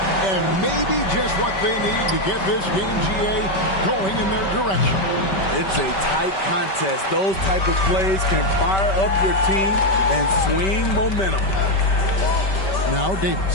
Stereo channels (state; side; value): late; right; 5.2 ms